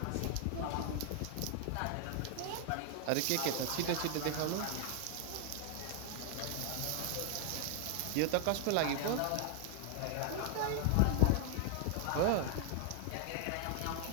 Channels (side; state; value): both; different; correlation 0.00